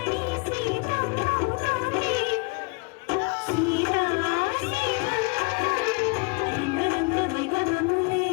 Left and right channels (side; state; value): right; quieter; 30.2 dB